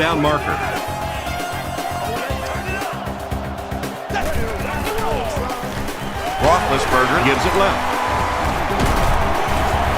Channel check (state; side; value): identical; both; correlation 1.00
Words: marker. Roethlisberger gives it left.